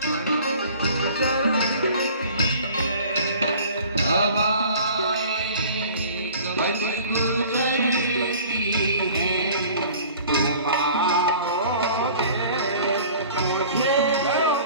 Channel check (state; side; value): inverted; both; correlation -0.47